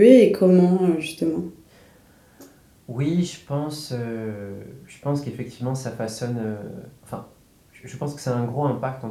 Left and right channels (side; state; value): both; identical; correlation 1.00